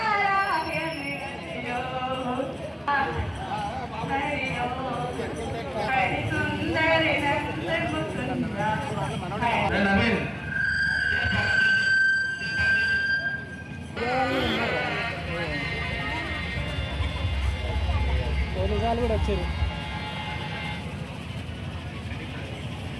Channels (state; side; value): identical; both; correlation 1.00